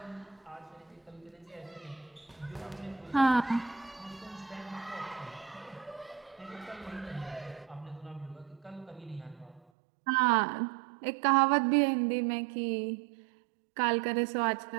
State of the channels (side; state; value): left; drops out; at 9.6 s